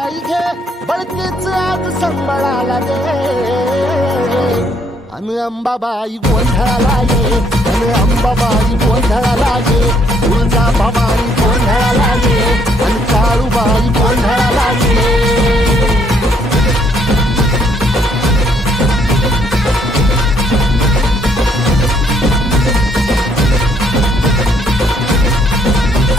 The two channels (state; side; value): normal; both; correlation 0.68